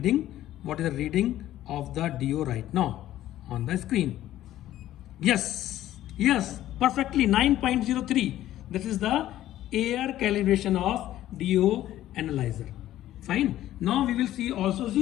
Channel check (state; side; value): quieter; right; 13.6 dB